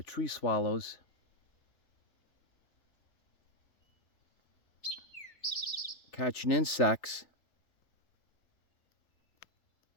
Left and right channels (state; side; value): late; right; 3.3 ms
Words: tree swallows. Catching insects.